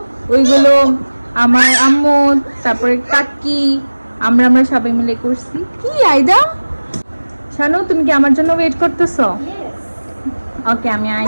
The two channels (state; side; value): inverted; both; correlation -1.00